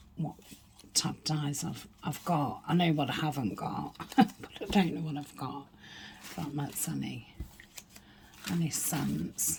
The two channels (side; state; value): both; identical; correlation 1.00